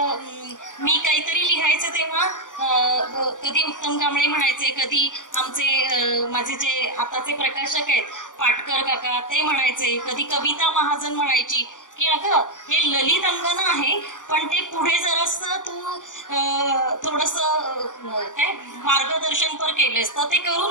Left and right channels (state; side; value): late; right; 0.87 ms